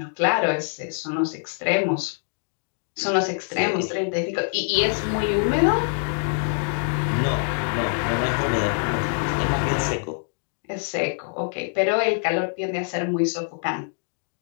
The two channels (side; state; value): right; silent; 60 dB below the other